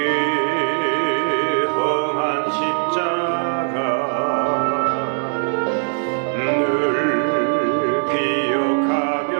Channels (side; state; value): left; silent; 66 dB below the other